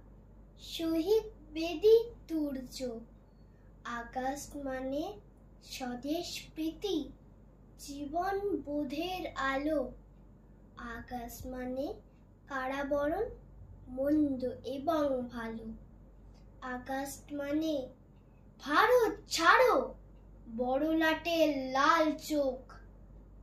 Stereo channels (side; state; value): both; identical; correlation 1.00